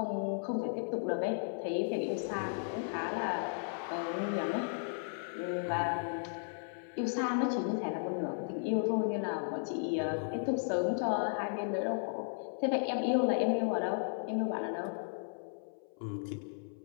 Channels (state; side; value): silent; right; 54 dB below the other